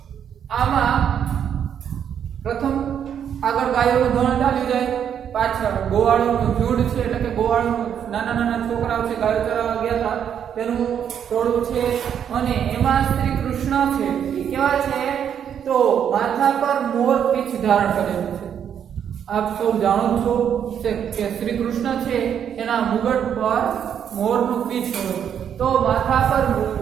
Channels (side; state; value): left; quieter; 8.7 dB